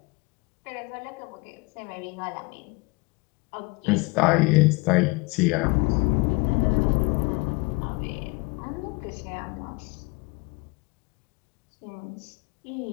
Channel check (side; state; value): right; quieter; 27.0 dB